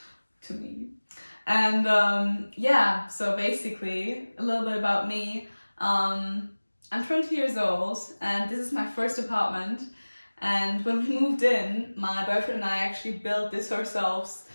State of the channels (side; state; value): both; inverted; correlation -1.00